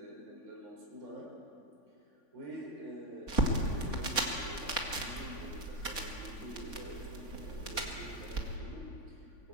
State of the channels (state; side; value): late; right; 3.5 ms